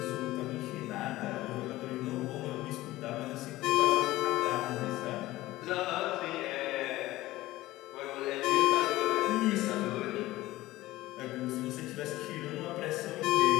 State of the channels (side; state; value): right; quieter; 17.3 dB